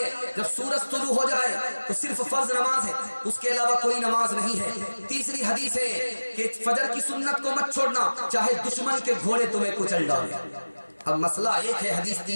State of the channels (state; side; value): inverted; both; correlation -1.00